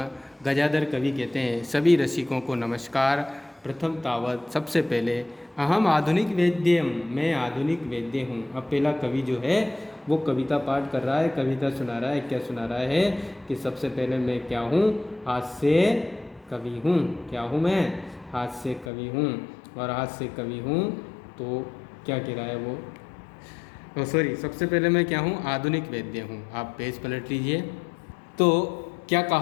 गजाधर कवि कहते हैं सभी रसिकों को नमस्कार। प्रथम तावत, सबसे पहले, अहम आधुनिक वेद्यम, मैं आधुनिक वेद्य हूँ। अब पहला कवि जो है वो कविता पाठ कर रहा है, कविता सुना रहा है। क्या सुना रहा है? कि सबसे पहले मैं क्या हूँ? हास्य कवि हूँ। क्या हूँ मैं? हास्य कवि हूँ। और हास्य कवि हूँ तो क्या कह रहा है वो? सबसे पहले मैं क्या हूँ? आधुनिक वेद्य हूँ। आप पेज पलट लीजिए। तो क्या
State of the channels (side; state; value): right; drops out; at 18.9 s